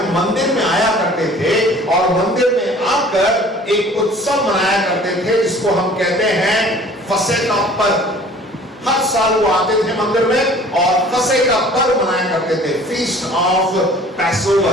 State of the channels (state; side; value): normal; both; correlation 0.49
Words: मंदिर में आया करते थे और मंदिर में आकर एक उत्सव मनाया करते थे जिसको हम कहते हैं फसह का पर्व। हर साल वो आते थे मंदिर में और फसह का पर्व मनाया करते थे, फीस्ट ऑफ